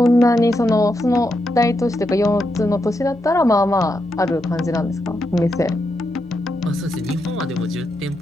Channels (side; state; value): both; normal; correlation 0.83